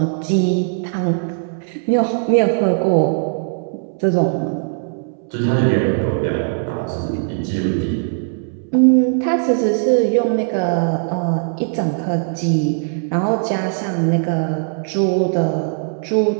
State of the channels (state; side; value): silent; left; 66 dB below the other